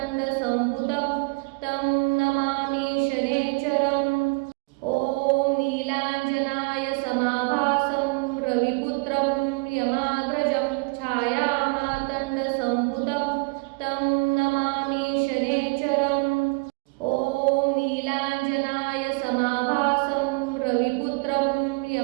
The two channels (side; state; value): left; quieter; 31.1 dB